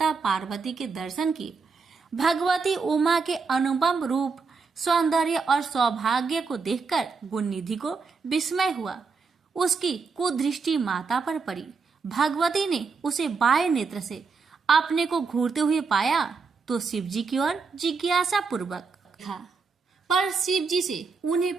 पार्वती के दर्शन किए। भगवती उमा के अनुपम रूप, सौंदर्य और सौभाग्य को देखकर गुणनिधि को विस्मय हुआ। उसकी कुदृष्टि माता पर पड़ी। भगवती ने उसे बाएं नेत्र से अपने को घूरते हुए पाया तो शिव जी की ओर जिज्ञासा पूर्वक देखा, पर शिव जी से उन्हें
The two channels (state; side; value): quieter; left; 4.9 dB